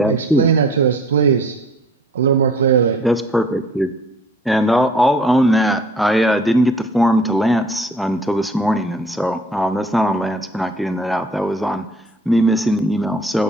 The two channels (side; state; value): both; normal; correlation 0.53